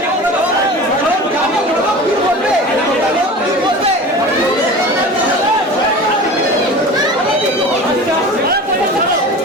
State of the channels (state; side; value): normal; both; correlation 0.35